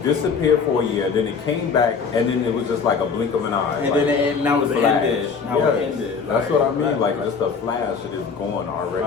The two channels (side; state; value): right; quieter; 5.5 dB